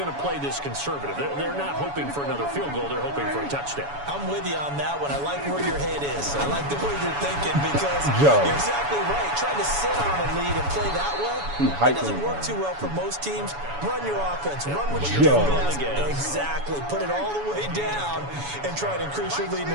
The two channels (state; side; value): late; left; 7.1 ms